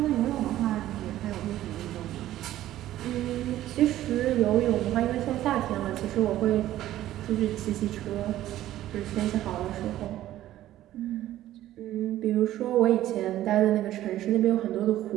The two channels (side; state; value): left; quieter; 13.7 dB